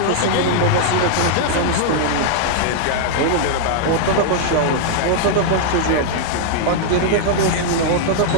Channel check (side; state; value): both; different; correlation -0.01